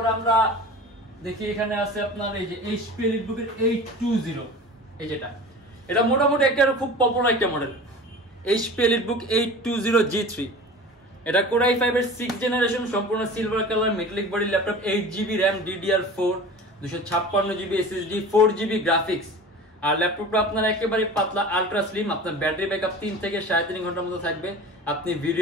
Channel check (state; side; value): normal; both; correlation 0.37